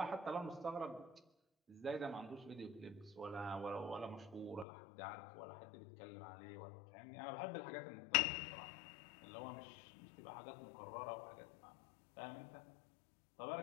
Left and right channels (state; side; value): drops out; right; at 4.7 s